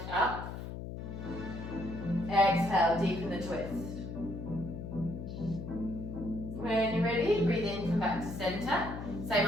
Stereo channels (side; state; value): left; noise; hum, 8 dB below the sound